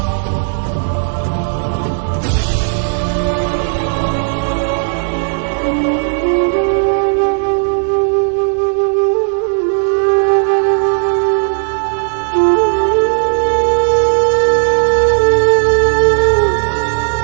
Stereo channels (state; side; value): silent; left; digital silence